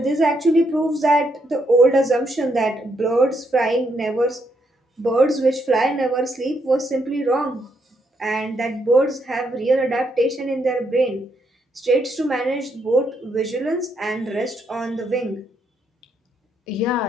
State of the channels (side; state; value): both; normal; correlation 0.76